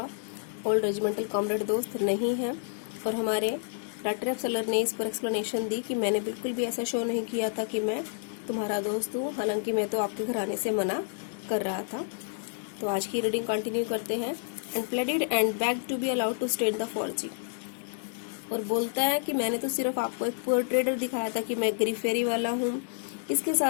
ओल्ड रेजिमेंटल कॉमरेड दोस्त नहीं है, और हमारे रट सेलर ने इस पर एक्सप्लेनेशन दी कि मैंने बिल्कुल भी ऐसा शो नहीं किया था कि मैं तुम्हारा दोस्त हूँ, हालांकि मैं तो आपके घर आने से मना कर रहा था। तो आज की रीडिंग कंटिन्यू करते हैं। And pleaded and begged to be allowed to state the फॉर्जी, और बोलता है कि मैंने तो सिर्फ आपको एक पुअर ट्रेडर दिखाया था कि मैं गरीब फेरी वाला हूँ। इसके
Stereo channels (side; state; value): right; silent; digital silence